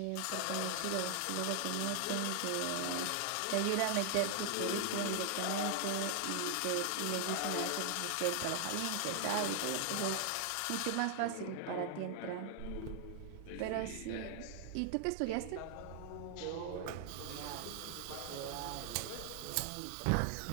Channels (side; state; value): both; different; correlation 0.00